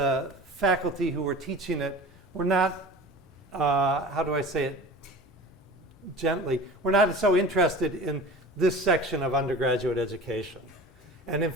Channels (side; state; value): both; normal; correlation 0.38